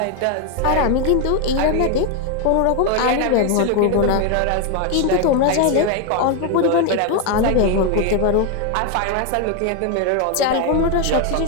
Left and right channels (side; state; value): both; different; correlation 0.01